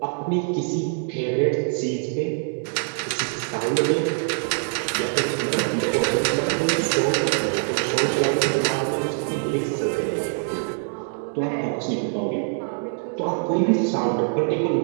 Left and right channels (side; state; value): left; silent; 55 dB below the other